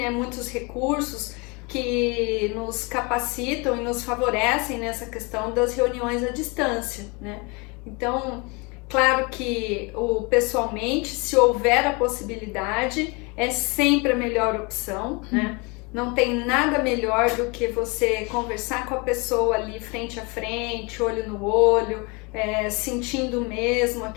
Muitos recursos que nos capacitam e nos favorecem nessa questão das reuniões à distância, né? Então, claro que pessoalmente, se houver a possibilidade, é sempre a melhor opção, né? Não tem nada melhor do que você conversar com a pessoa ali frente a frente, olho no olho, sentindo mesmo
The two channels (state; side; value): quieter; right; 29.1 dB